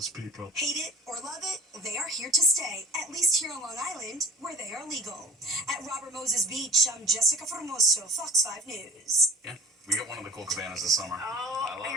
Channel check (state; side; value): normal; both; correlation 0.43